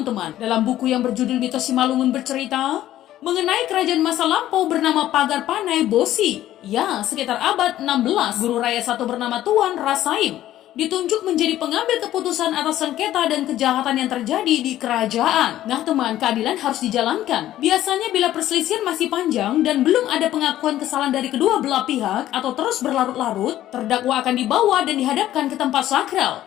teman. Dalam buku yang berjudul Mitos Simalungun bercerita mengenai kerajaan masa lampau bernama Pagar Panai Bosi. Ya, sekitar abad 16, guru raya satu bernama Tuan Rasaim ditunjuk menjadi pengambil keputusan atas sengketa dan kejahatan yang terjadi di kerajaan. Nah teman, keadilan harus dijalankan. Biasanya bila perselisihan masih panjang dan belum ada pengakuan kesalahan dari kedua belah pihak atau terus berlarut-larut, terdakwa akan dibawa dan dihadapkan ke tempat sakral,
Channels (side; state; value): right; quieter; 13.3 dB